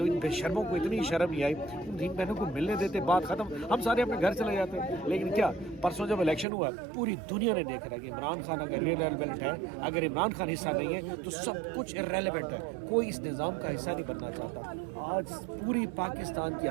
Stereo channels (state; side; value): drops out; left; at 6.5 s